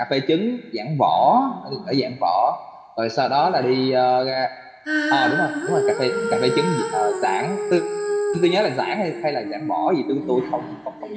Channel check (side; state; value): both; identical; correlation 1.00